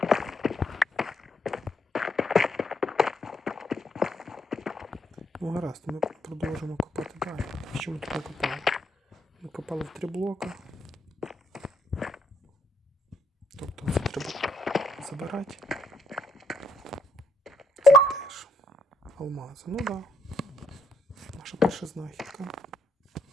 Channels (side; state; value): both; normal; correlation 0.74